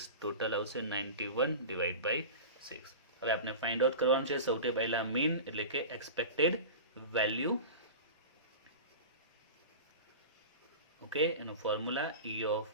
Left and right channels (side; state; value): both; inverted; correlation -0.31